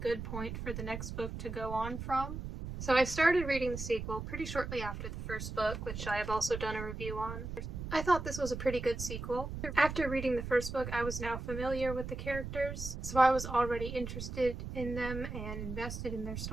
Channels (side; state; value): right; noise; rumble, 7 dB below the sound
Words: point for the next book to go on from. So I started reading the sequel pretty shortly after the first book, which I have also done a review on. I thought this was a pretty good sequel. After reading the first book, I was now familiar with the characters, so I was already interested in them and invested in their